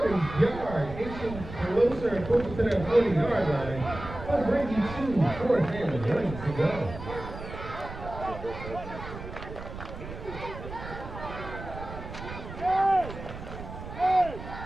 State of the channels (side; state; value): right; noise; rumble, 11 dB below the sound